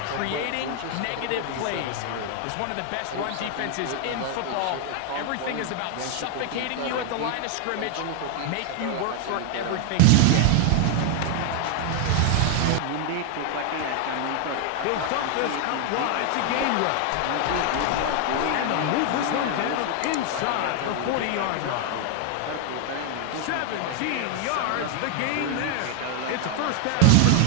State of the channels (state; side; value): different; both; correlation 0.00